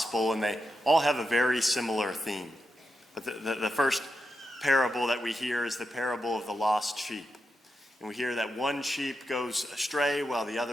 and they all have a very similar theme. But the first parable that we hear is the parable of the lost sheep. And we hear that one sheep goes astray while the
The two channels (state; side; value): normal; both; correlation 0.87